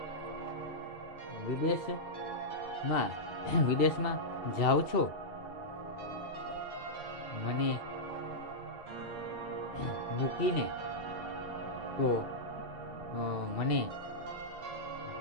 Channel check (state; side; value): late; right; 2.7 ms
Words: વિદેશમાં જાઓ છો, મને મૂકીને, તો મને